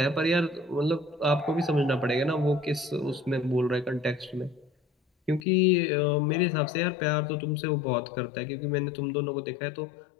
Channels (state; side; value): drops out; right; at 5.4 s